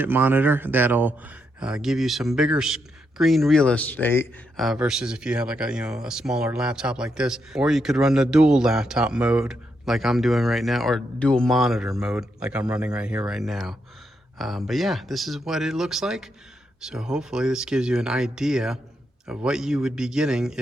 monitor that'll give you some bigger screen real estate versus if you have like a smaller laptop like this, or you could run the dual laptop mode like I'm doing right now, or dual monitor mode like I'm running right here right now. But yeah, this is what it looks like. So hopefully this gives you an idea of what you would be getting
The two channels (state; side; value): normal; both; correlation 0.81